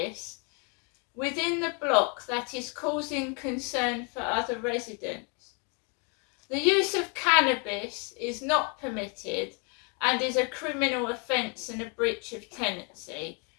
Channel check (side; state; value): right; quieter; 35.4 dB